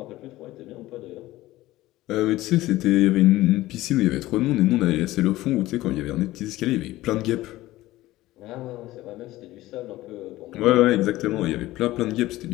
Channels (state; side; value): quieter; right; 17.0 dB